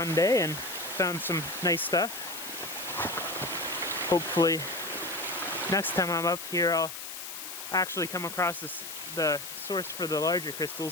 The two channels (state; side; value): noise; left; hiss, 9 dB below the sound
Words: day and found some nice stuff. Hopefully next time I'm up here I'll actually come across the source for the larger